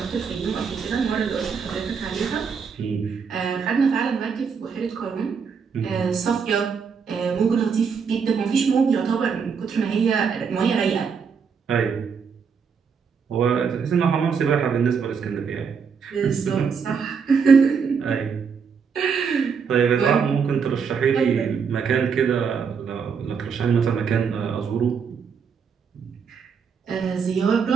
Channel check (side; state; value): left; quieter; 6.2 dB